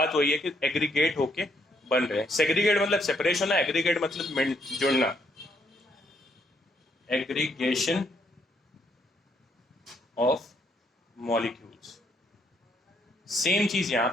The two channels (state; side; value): normal; both; correlation 0.72